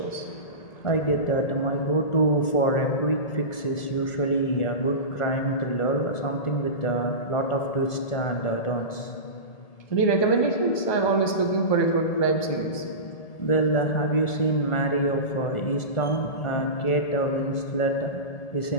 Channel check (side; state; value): right; late; 1.8 ms